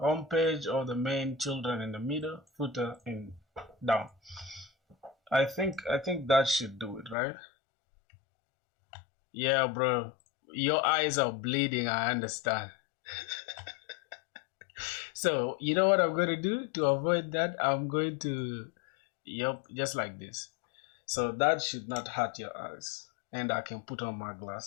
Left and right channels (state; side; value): drops out; right; at 7.2 s